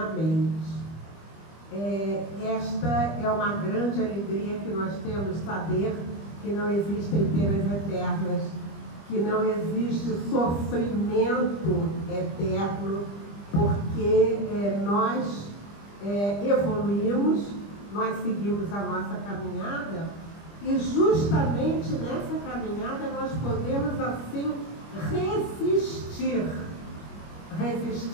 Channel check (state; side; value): late; right; 25 ms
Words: Esta é uma grande alegria que nós temos, saber que não existem penas eternas, que não existe sofrimento eterno, porque nós evoluímos, nós seguimos a nossa caminhada, e justamente nessa caminhada nós podemos assim resistir,